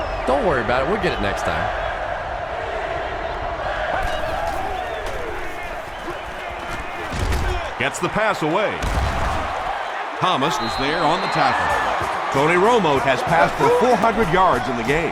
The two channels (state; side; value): identical; both; correlation 1.00